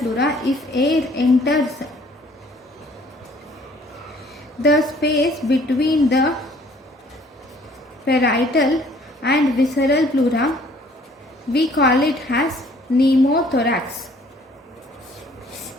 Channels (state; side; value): normal; both; correlation 0.58